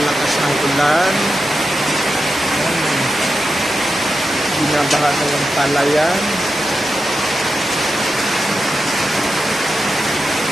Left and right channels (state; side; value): normal; both; correlation 0.89